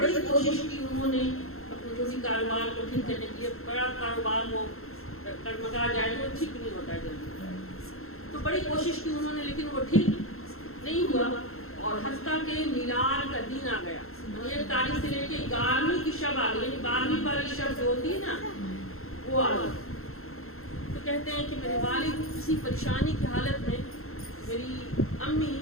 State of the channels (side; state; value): right; late; 0.62 ms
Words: کوشش کی انہوں نے اپنے جو بھی کاروبار کو ٹھیک کرنے کے لیے۔ بڑا کاروبار ہو ٹگمگا جائے تو ٹھیک نہیں ہوتا ہے جلدی، تو بڑی کوشش کی انہوں نے، لیکن وہ ٹھیک نہیں ہوا، اور حتیٰ کہ میلاد کا دن آ گیا، 1 تاریخ سے لے کے 11ویں کی شب آ گئی، یعنی 12ویں والی شب جو ہوتی ہے نا وہ آ گئی۔ تو کہتے ہیں کہ میرے والد کسی پریشانی کی حالت میں، میری امی